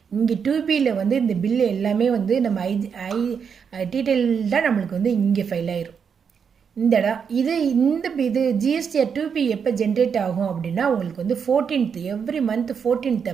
இங்கே 2Bயில் வந்து இந்த பில்லு எல்லாமே வந்து நம்ம டீட்டெயில்டாக நம்மளுக்கு வந்து இங்கே ஃபைல் ஆயிரும். இந்த இது GSTR 2B எப்போ ஜென்ரேட் ஆகும் அப்படின்னா, உங்களுக்கு வந்து 14th, எவ்ரி மந்த் 14th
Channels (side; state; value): left; quieter; 6.7 dB